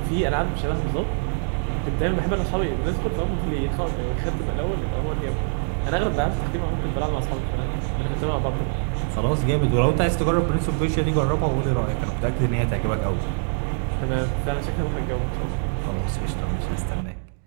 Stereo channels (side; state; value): left; silent; digital silence